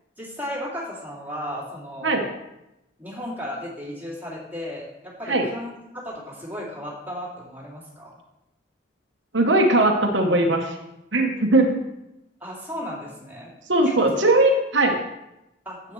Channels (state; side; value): normal; both; correlation 0.15